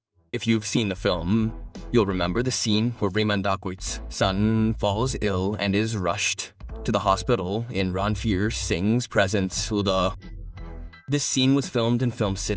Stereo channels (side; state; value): both; identical; correlation 1.00